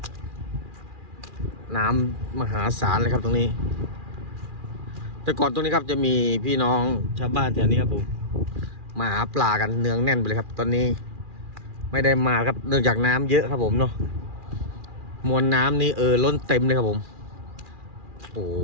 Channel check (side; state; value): left; late; 2.4 ms